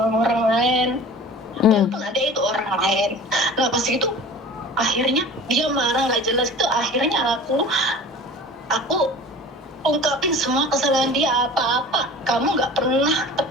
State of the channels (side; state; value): both; normal; correlation 0.41